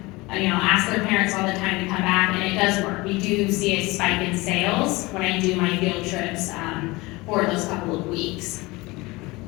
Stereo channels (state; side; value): quieter; right; 22.5 dB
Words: ask their parents all the time to come back, and it does work. We do see a spike in sales when I do my field trips for those couple of weeks.